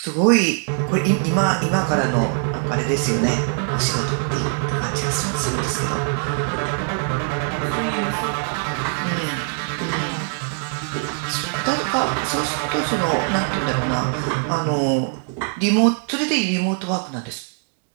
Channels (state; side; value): silent; left; 55 dB below the other